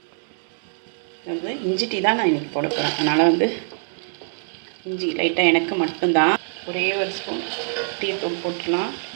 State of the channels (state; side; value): silent; left; digital silence